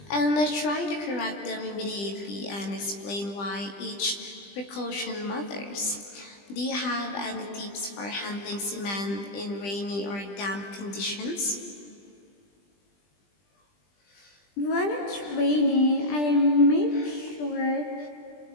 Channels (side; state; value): right; late; 20 ms